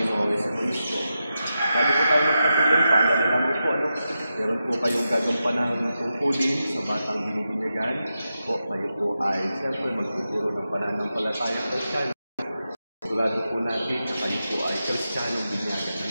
sa Kristo. Bago po tayo magpatuloy, paalala naman po, meron po kayong gagampanang tungkulin sa batang binibinyagan. Kayo po ay siyempre magtuturo ng pananampalatayang Kristiyano. Sigurado po natin na kayo po ay Kristiyanong binyagan.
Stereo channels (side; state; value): both; inverted; correlation -0.89